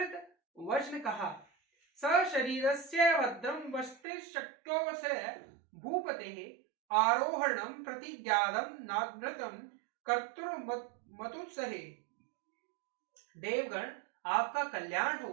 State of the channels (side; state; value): left; drops out; at 4.0 s